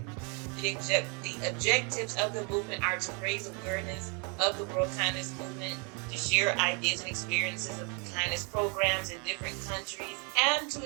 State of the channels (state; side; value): quieter; left; 33.7 dB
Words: The objectives of the movement are to raise awareness of the World Kindness Movement, to share ideas and experiences of kindness programs in different countries, and to